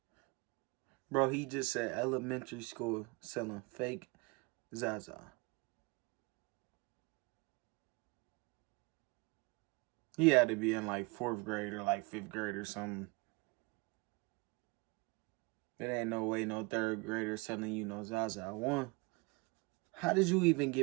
Bro, he just said elementary school selling fake Zaza. He had to be in like 4th grade or like 5th grade or something. There ain't no way no 3rd grader selling you no Zaza. One, how did you even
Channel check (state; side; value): quieter; left; 27.7 dB